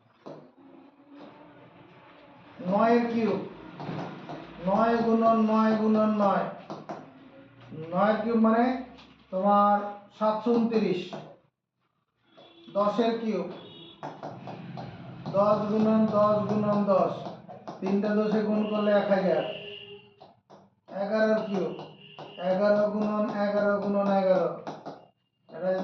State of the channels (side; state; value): both; identical; correlation 1.00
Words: 9-এর কিউব 9 গুণন 9 গুণন 9, 9-এর কিউব মানে তোমার 729। 10-এর কিউব 10 গুণন 10 গুণন 10, 3টা 10-এ গুণ করলে 1000। 11-এর কিউব 11 গুণন 11 গুণন 11, এটা